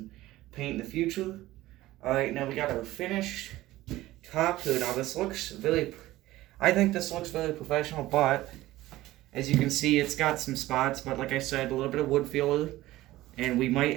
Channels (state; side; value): quieter; left; 16.6 dB